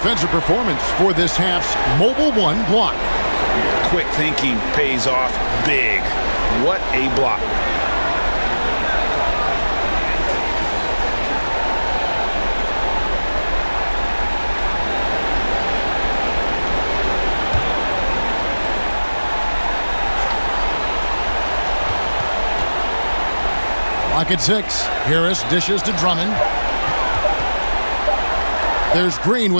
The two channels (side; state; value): both; inverted; correlation -1.00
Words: performance for this half's Mobile One block? Quick thinking pays off big. What a block. Clock at 6. Harris dishes to Drummond. There's Green